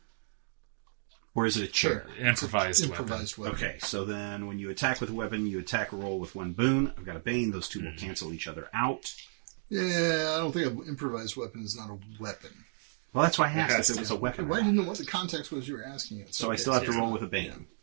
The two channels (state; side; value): silent; left; digital silence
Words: or is it a chair? Sure. Improvised Improvised weapon. Okay, so then when you attack with a weapon, you attack a roll with one boon. I've got a bane; those two will cancel each other out. Yeah, I don't think an improvised weapon is not a weapon. Well, that's why I asked Yes, if it was a weapon. Well, I or didn't not. know what the context was you were asking it. So I still have to roll with a bane.